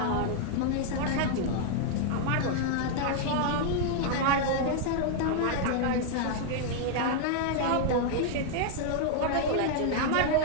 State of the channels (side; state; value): both; different; correlation 0.00